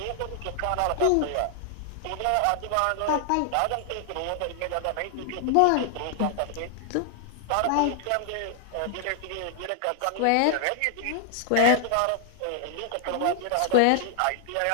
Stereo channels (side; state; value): both; different; correlation 0.00